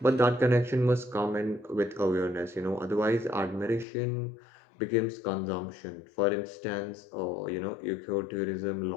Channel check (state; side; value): drops out; right; at 3.9 s